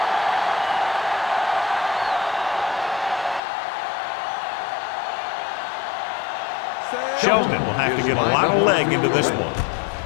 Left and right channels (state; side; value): drops out; right; at 3.4 s